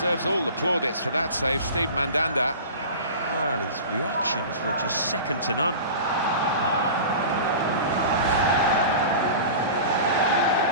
all the plaudits for that save, Steve Mandanda. Well, his reactions were just second to none.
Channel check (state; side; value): inverted; both; correlation -0.35